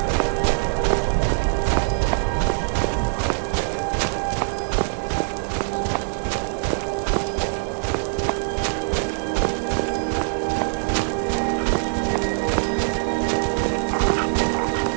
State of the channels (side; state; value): left; silent; digital silence